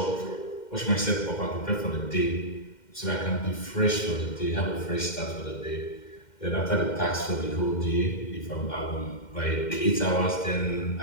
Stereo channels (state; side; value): late; right; 2.1 ms